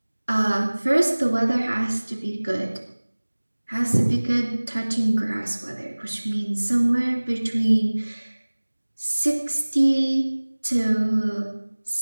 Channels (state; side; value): inverted; both; correlation -1.00